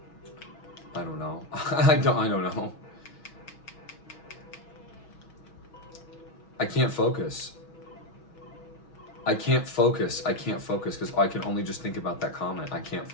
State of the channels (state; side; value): late; right; 6.2 ms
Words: I don't know. I don't know. I can't focus. I can't focus because I can only just think about that comment. I can't